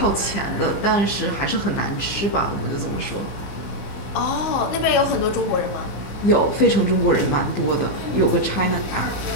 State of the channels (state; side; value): late; right; 15 ms